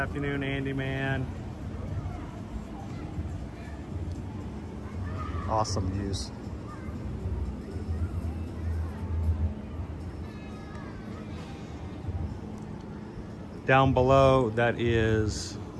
Andy, man. Awesome views. Down below, that is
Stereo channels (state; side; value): identical; both; correlation 1.00